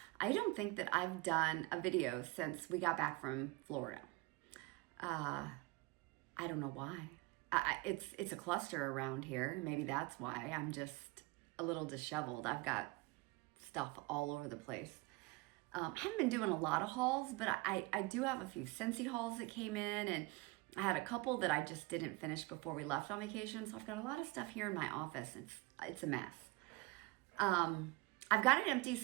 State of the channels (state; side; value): quieter; left; 23.8 dB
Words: I don't think that I've done a video since we got back from Florida. I don't know why. It's a cluster around here. Maybe that's why. I'm just a little disheveled. I've got stuff all over the place. I haven't been doing a lot of hauls, but I do have a few Scentsy hauls that came in, and I had a couple that I just didn't finish before we left on vacation. So I've got a lot of stuff here in my office. It's a mess. I've got an